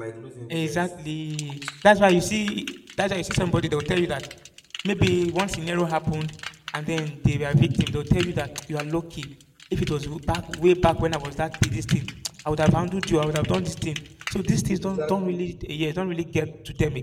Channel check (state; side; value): identical; both; correlation 1.00